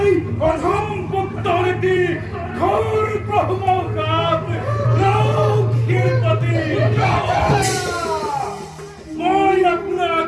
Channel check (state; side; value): identical; both; correlation 1.00